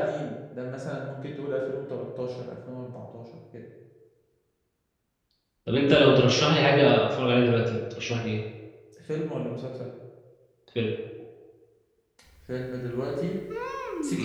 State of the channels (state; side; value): identical; both; correlation 1.00